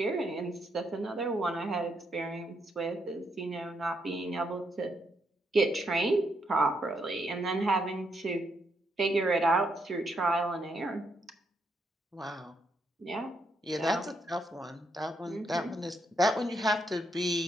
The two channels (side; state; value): both; normal; correlation 0.77